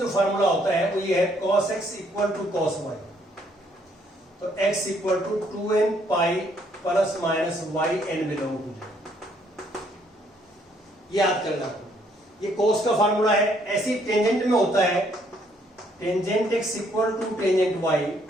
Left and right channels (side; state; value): both; normal; correlation 0.68